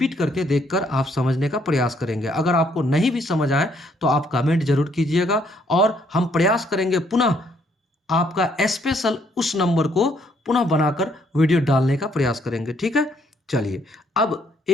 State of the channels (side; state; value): both; normal; correlation 0.68